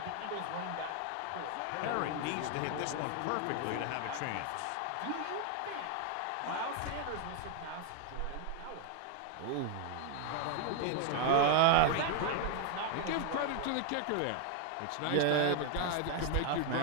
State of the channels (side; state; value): both; different; correlation 0.00